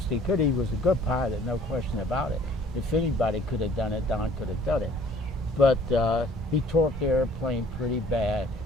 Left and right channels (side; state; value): both; normal; correlation 0.55